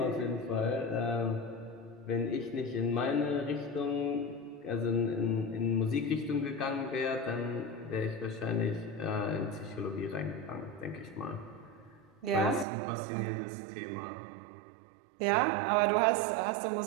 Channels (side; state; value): left; drops out; at 12.7 s